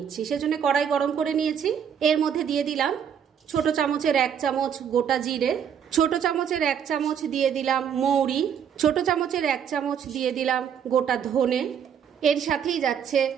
সেজন্য কড়াই গরম করে নিয়েছি। এর মধ্যে দিয়ে দিলাম ছোট চামচের 1 চামচ গোটা জিরে, ছোট চামচের 1 চামচ দিয়ে দিলাম মৌরি, ছোট চামচের 1 চামচ দিয়ে দিলাম গোটা ধনে, এর সাথেই যাচ্ছে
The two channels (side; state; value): left; quieter; 8.2 dB